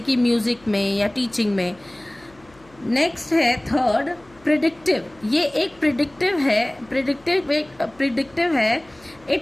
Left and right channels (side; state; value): left; noise; hum, 28 dB below the sound